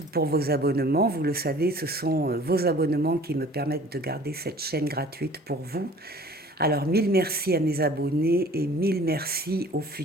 pour vos abonnements. Vous le savez, ce sont vos abonnements qui me permettent de garder cette chaîne gratuite pour vous. Alors, mille merci à mes abonnés et mille merci aux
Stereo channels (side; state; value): both; normal; correlation 0.49